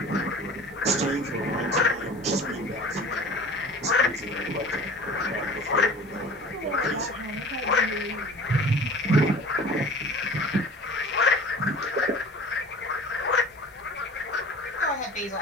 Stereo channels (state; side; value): normal; both; correlation 0.43